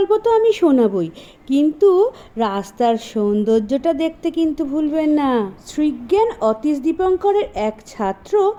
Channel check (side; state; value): both; identical; correlation 1.00